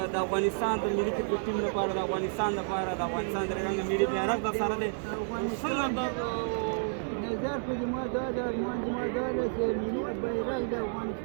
د افغانستان د ملي کرکټ ټیم لپاره، د افغانستان لپاره، د افغانستان د رنګ ملي بیرغ در سره دی؟ څنګه نظر په زما دا ده، ارمان زما دا ده چې ملي بیرغ د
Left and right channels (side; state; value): left; silent; digital silence